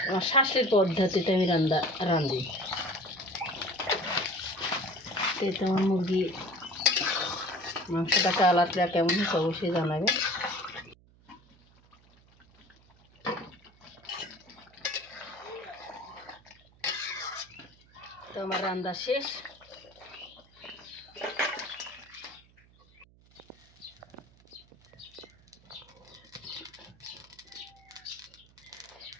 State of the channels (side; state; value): right; noise; hum, 28 dB below the sound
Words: আমার শাশুড়ির পদ্ধতিতে আমি রান্ধি। এতে আমার মুরগি মাংসটা কালারটা কেমন হচ্ছে অবশ্যই জানাবে। তো আমার রান্না শেষ।